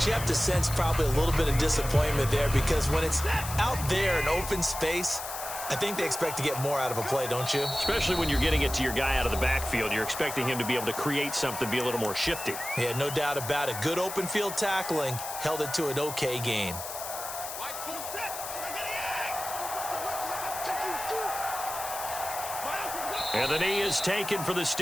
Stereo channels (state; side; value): noise; left; hiss, 8 dB below the sound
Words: you have to sense probably a little bit of disappointment there, because when it's out there in open space, I think they expect to get more out of a play, don't you? Especially when you're getting it to your guy out of the backfield. You're expecting him to be able to create something, be a little more shifty. Yeah, no doubt about it. Good open field tackling held it to an okay gain. And the knee is taken for the